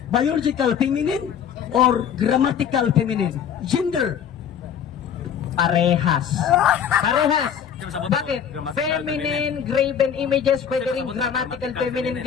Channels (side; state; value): right; quieter; 8.2 dB